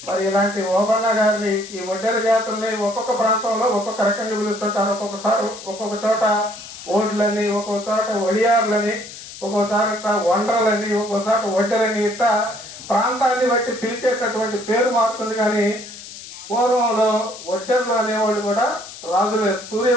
మరి ఇలాంటి ఓబన్న గారిని ఈ ఒడ్డెర జాతుల్ని ఒక్కొక్క ప్రాంతంలో ఒక్కొక్క రకంగా పిలుస్తుంటారు. ఒక్కొక్కసారి ఒక్కొక్క చోట ఓడ్లని, ఒక్కొక్క చోట ఒడియార్లని, ఒక్కోసారి వండ్రలని, ఒక్కోసారి ఒడ్డెరని, ఇట్లా ప్రాంతాన్ని బట్టి పిలిచేటటువంటి పేరు మారుతుంది. కానీ పూర్వంలో ఒడ్డెర్లు అనేవాళ్ళు కూడా రాజులే,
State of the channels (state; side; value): noise; left; hiss, 14 dB below the sound